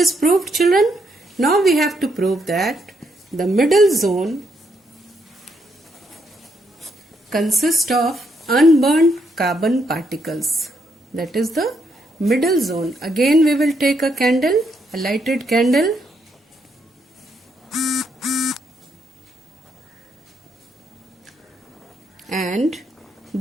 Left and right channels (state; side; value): normal; both; correlation 0.76